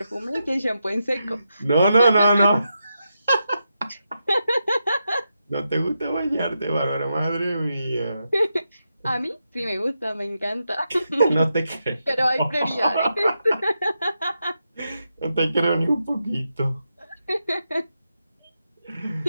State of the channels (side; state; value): both; inverted; correlation -0.86